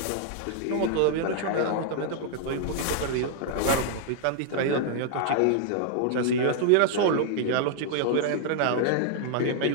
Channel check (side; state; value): both; different; correlation 0.00